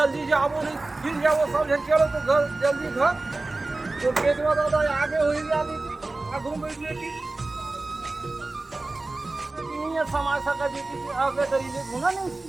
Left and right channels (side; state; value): left; quieter; 3.2 dB